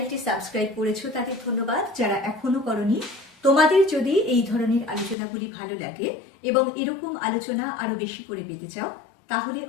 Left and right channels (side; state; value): right; drops out; at 5.2 s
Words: সাবস্ক্রাইব করেছো তাদের ধন্যবাদ। যারা এখনো করনি, তোমাদের যদি এই ধরনের আলোচনাগুলি ভালো লাগে এবং এরকম আলোচনা আরো বেশি করে পেতে চাও, তাহলে